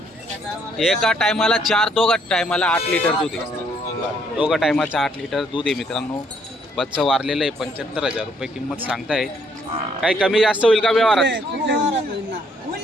टायमाला 4, दोघा टायमाला 8 लिटर दूध आहे. दोघा टायमाचं 8 लिटर दूध आहे मित्रांनो. बच्चा वारलेलं आहे. 75,000 रुपये किंमत सांगताय. काही कमी जास्त होईल का व्यवहारात?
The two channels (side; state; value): both; normal; correlation 0.68